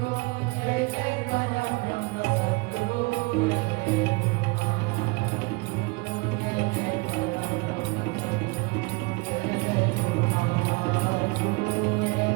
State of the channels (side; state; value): left; quieter; 27.0 dB